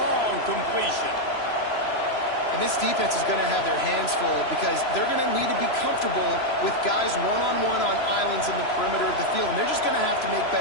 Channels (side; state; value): right; late; 3.0 ms